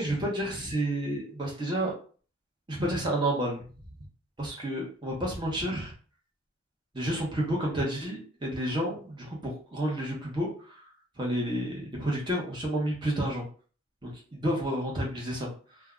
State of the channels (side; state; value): both; normal; correlation 0.59